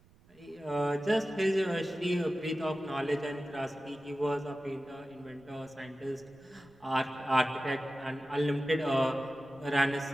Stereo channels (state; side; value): noise; right; rumble, 27 dB below the sound